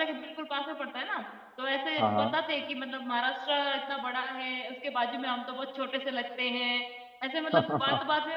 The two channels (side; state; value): both; identical; correlation 1.00